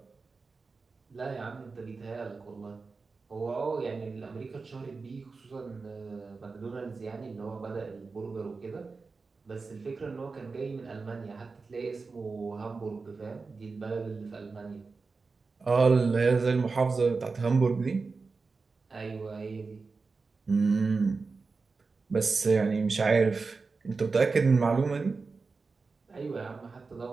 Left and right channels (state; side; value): quieter; left; 4.3 dB